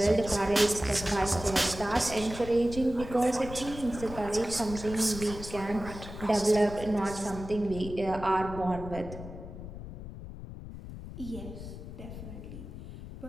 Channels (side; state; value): left; noise; rumble, 11 dB below the sound